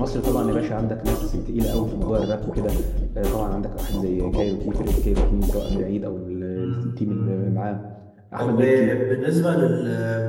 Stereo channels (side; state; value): both; identical; correlation 1.00